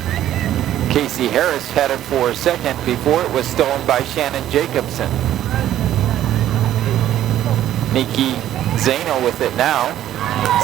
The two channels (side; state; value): left; quieter; 12.3 dB